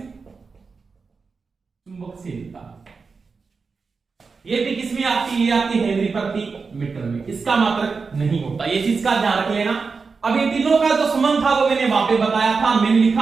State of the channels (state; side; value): quieter; left; 4.8 dB